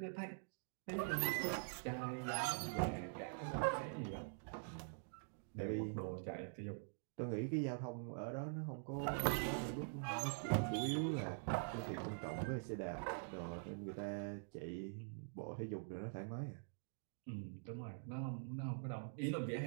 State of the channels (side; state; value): left; silent; digital silence